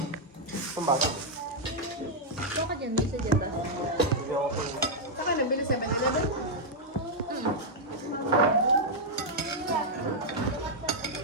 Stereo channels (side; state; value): both; normal; correlation -0.03